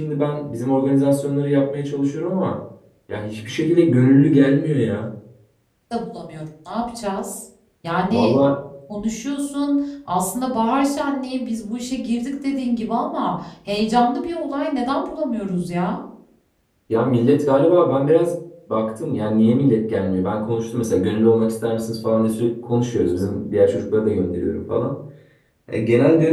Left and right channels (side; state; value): both; identical; correlation 1.00